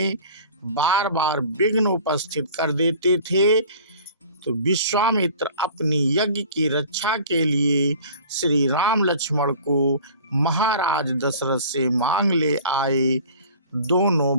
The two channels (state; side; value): inverted; both; correlation -0.45